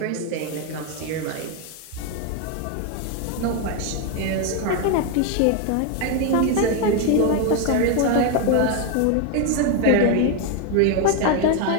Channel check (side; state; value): both; different; correlation 0.01